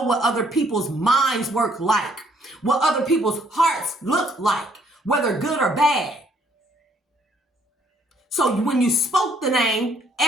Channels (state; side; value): normal; both; correlation 0.66